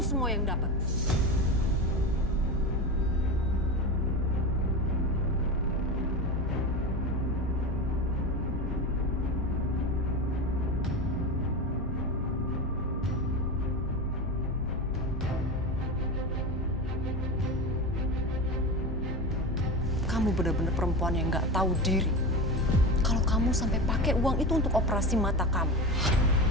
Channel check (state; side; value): normal; both; correlation 0.24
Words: semua yang dapat. Kamu benar-benar perempuan yang nggak tahu diri. Kalau kamu sampai pakai uang itu untuk operasi mata kamu.